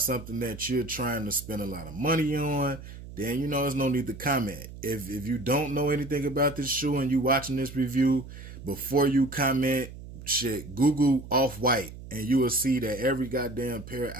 that you're trying to spend a lot of money on, then you know there's no need to comment. If you don't know anything about this shoe and you watching this review, before you comment, shit, Google Off-White and you will see that every goddamn pair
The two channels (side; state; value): right; noise; hum, 14 dB below the sound